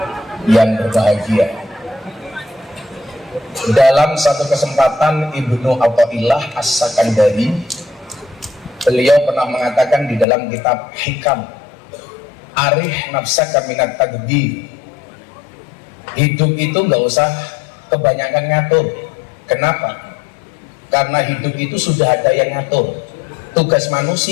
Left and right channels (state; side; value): drops out; right; at 10.2 s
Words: yang berbahagia. Dalam satu kesempatan Ibnu Athaillah As-Sakandari, beliau pernah mengatakan di dalam kitab Hikam, arih nafsaka minat tadbir, hidup itu nggak usah kebanyakan ngatur. Kenapa? Karena hidup itu sudah ada yang ngatur. Tugas